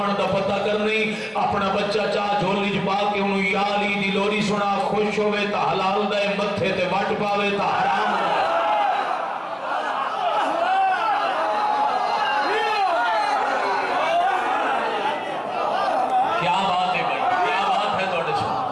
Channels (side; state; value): both; identical; correlation 1.00